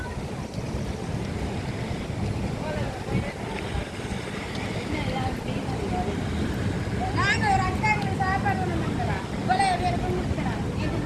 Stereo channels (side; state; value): both; identical; correlation 1.00